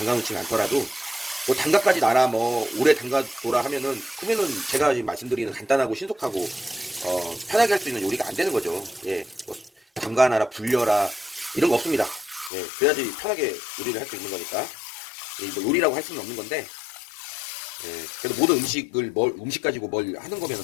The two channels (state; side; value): drops out; right; at 12.5 s